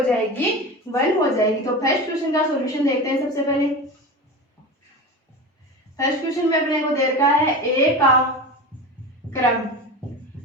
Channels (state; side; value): normal; both; correlation 0.27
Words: जाएगी, 1 हो जाएगी। तो फर्स्ट क्वेश्चन का सॉल्यूशन देखते हैं। सबसे पहले फर्स्ट क्वेश्चन में अपने को दे रखा है ए का क्रम,